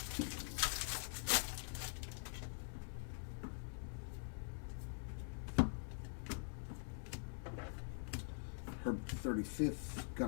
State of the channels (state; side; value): silent; right; digital silence